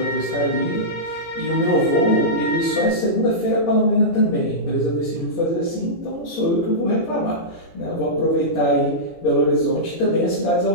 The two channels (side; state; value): right; late; 17 ms